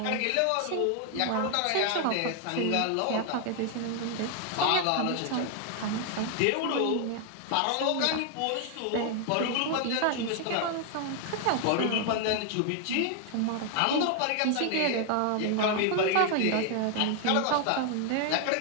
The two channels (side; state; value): both; different; correlation 0.00